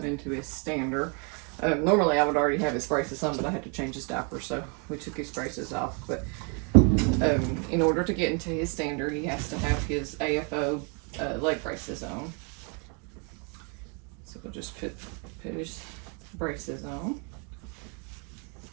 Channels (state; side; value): quieter; left; 36.3 dB